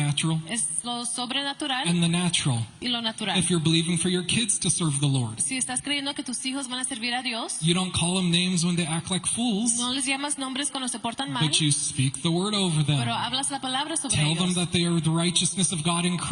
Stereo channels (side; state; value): both; identical; correlation 1.00